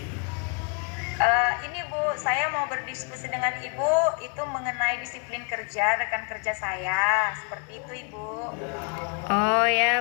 ini Bu, saya mau berdiskusi dengan Ibu itu mengenai disiplin kerja rekan kerja saya. Seperti itu Ibu. Oh ya,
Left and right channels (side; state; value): right; quieter; 35.4 dB